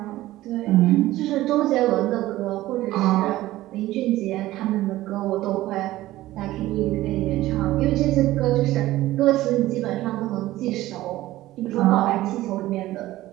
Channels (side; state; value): left; quieter; 16.1 dB